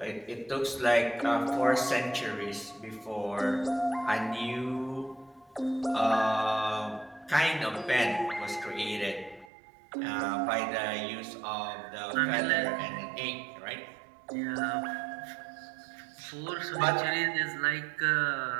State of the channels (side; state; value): left; drops out; at 9.5 s